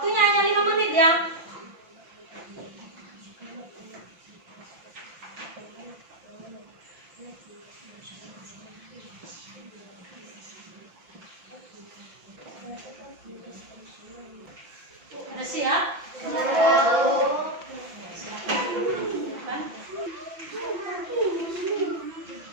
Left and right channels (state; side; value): late; left; 5.9 ms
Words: hanya 5 menit ya. Udah siap?